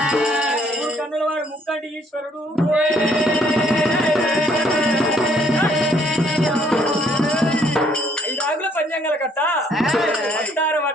కన్నుల వాడు ముక్కంటి ఈశ్వరుడు 5 ఆకుల పంచాంగాల కట్ట వస్తారం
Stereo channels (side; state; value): both; normal; correlation 0.65